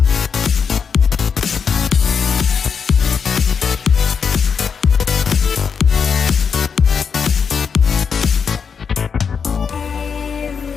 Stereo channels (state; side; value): quieter; right; 6.3 dB